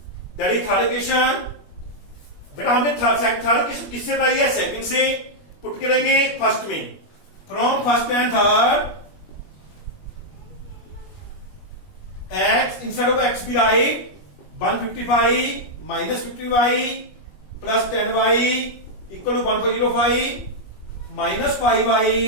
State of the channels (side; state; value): right; late; 21 ms